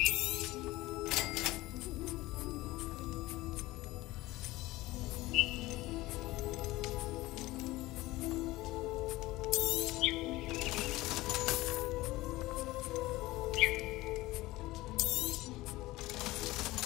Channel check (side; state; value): right; quieter; 18.9 dB